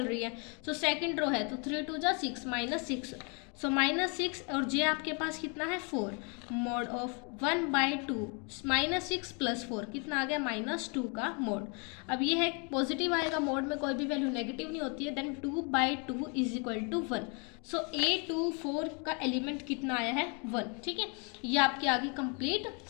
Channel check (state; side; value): quieter; right; 34.9 dB